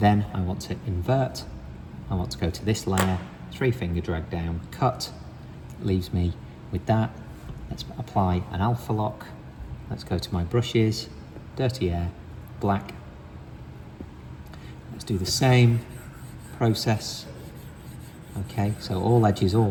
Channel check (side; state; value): both; identical; correlation 1.00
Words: I want to invert. I want to go to this layer, 3-finger drag down, cut. Leaves me with that. Let's apply an alpha lock. Let's go to my brushes, dirty air, black. Let's do the same process. Okay, so all edges